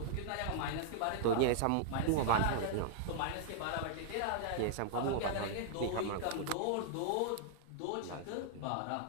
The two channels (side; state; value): both; different; correlation -0.01